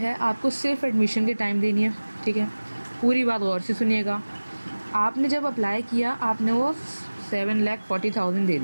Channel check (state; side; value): inverted; both; correlation -1.00